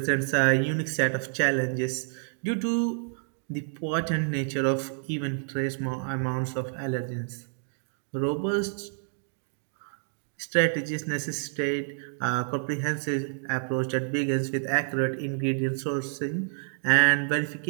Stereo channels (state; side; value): silent; left; 58 dB below the other